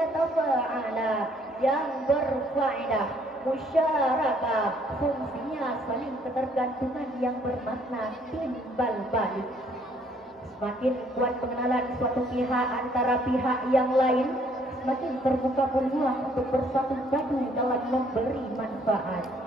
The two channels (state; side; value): normal; both; correlation 0.64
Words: tafa'ala yang berfaedah musyarakah, fungsinya saling ketergantungan yang bermakna timbal balik. Semakin kuat pengenalan suatu pihak antara pihak yang lain, semakin terbuka peluang untuk bersatu padu dalam memberi manfaat.